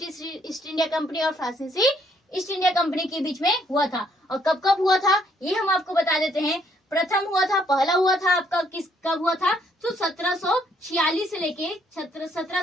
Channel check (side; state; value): both; normal; correlation 0.68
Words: ईस्ट इंडिया कंपनी और फ्रांसीसी ईस्ट इंडिया कंपनी के बीच में हुआ था। और कब कब हुआ था ये हम आपको बता देते हैं। प्रथम हुआ था, पहला हुआ था आपका कब हुआ था? तो 1746 से लेके